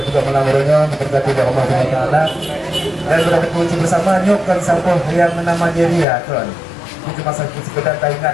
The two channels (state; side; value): drops out; right; at 6.1 s